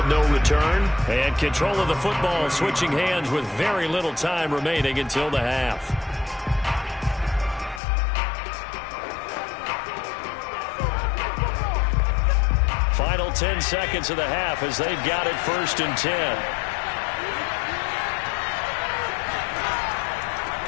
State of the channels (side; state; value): right; drops out; at 7.8 s